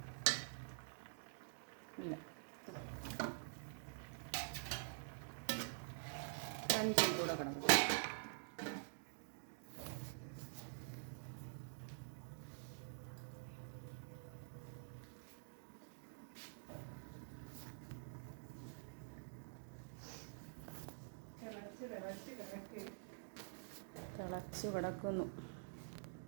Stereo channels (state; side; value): silent; left; digital silence